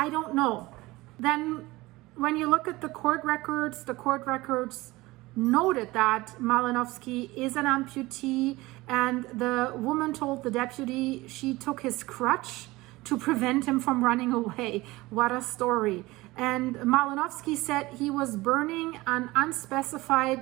don't know. Then when you look at the court records noted that Malinowski is an amputee, and the woman told the deputy she took his crutch to prevent him from running away. What a story. And Malinowski said he was burning an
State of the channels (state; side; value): quieter; left; 20.2 dB